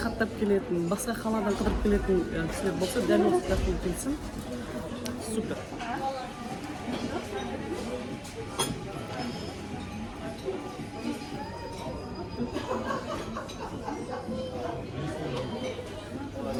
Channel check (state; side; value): identical; both; correlation 1.00